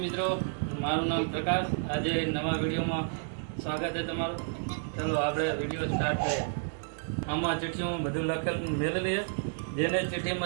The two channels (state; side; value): silent; left; digital silence